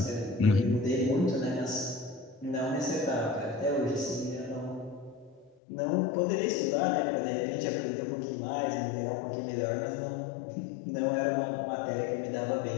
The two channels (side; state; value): right; drops out; at 5.6 s